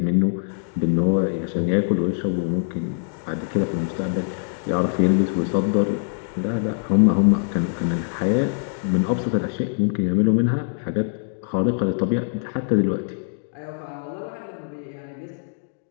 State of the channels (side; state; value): right; silent; digital silence